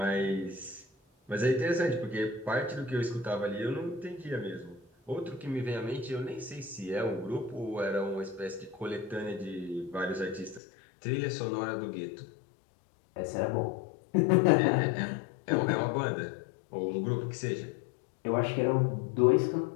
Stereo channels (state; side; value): drops out; right; at 10.6 s